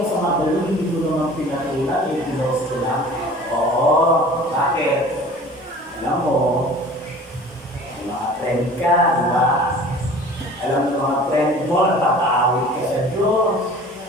sa magaling, hindi ko naman pinatulan, yung pinost ko lang? Oo, bakit? Alam mo, may mga friend ka, di ba? Alam mo mga friend mo, nakakaawit ka sa Diyos.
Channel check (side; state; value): both; normal; correlation 0.44